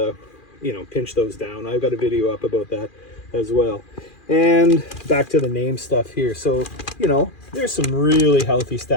you know, pinch those down. I've got a video up about that as well. And back to the name stuff here. So, you know, there's some really healthy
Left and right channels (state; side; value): late; right; 2.4 ms